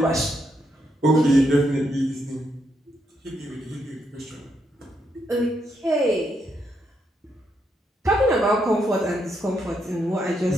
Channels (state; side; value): normal; both; correlation 0.79